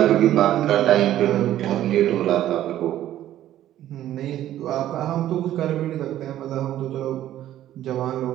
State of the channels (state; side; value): quieter; left; 12.7 dB